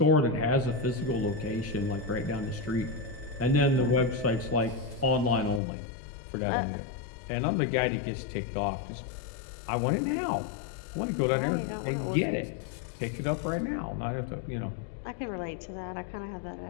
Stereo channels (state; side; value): drops out; right; at 5.6 s